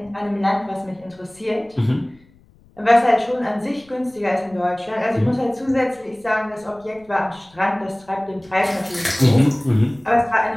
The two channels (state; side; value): noise; left; rumble, 29 dB below the sound